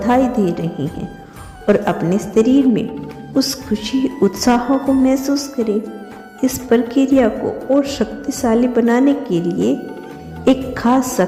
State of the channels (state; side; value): identical; both; correlation 1.00